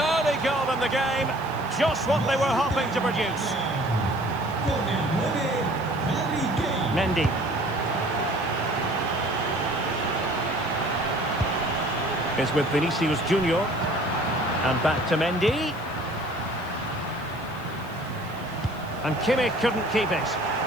goal in the game, just what they were hoping to produce. Mendy. Is with Vinicius Junior. And back to Mendy. And Kimmich couldn't keep it.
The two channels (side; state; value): right; noise; hiss, 25 dB below the sound